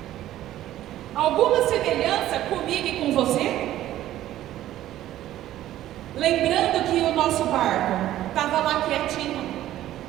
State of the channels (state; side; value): quieter; left; 13.5 dB